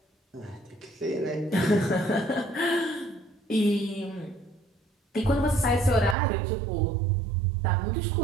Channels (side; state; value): left; drops out; at 6.2 s